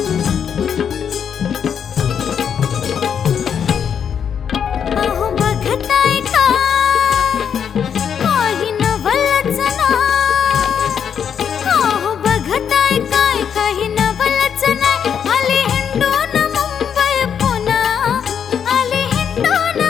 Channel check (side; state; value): right; quieter; 7.8 dB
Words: अहो बघताय का काही नवलच ना. अहो बघताय काय काही नवलच नाही. आली हिंडून मुंबई पुणा. आली हिंडून